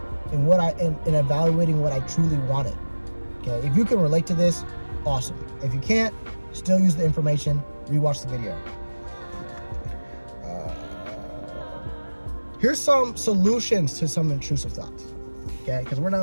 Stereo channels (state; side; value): inverted; both; correlation -1.00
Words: and and evaluating what I truly wanted. Okay, if you can relate to this, awesome. If you can't, still use the information, rewatch the video. Here's some solutions to some intrusive thoughts. Okay, because we're